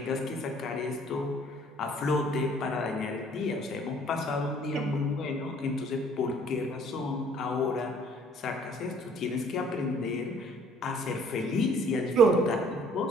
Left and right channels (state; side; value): normal; both; correlation 0.57